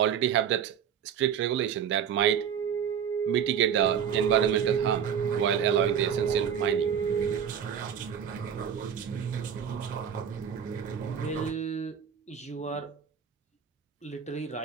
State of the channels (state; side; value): quieter; left; 8.2 dB